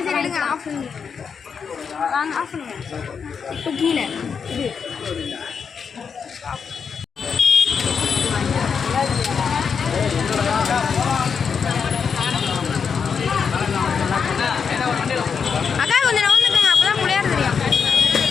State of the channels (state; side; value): quieter; right; 6.3 dB